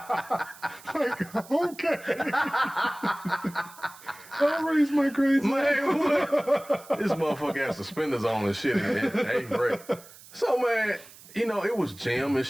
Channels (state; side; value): noise; right; hiss, 21 dB below the sound